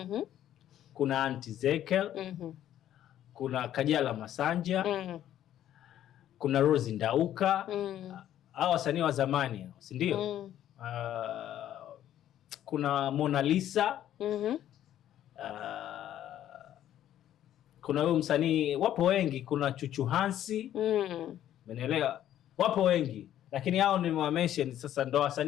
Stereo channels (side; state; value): right; quieter; 11.6 dB